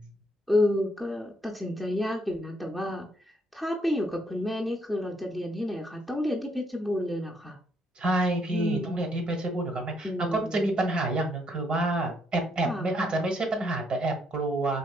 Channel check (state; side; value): normal; both; correlation 0.72